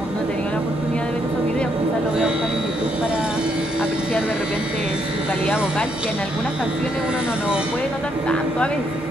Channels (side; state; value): both; normal; correlation 0.74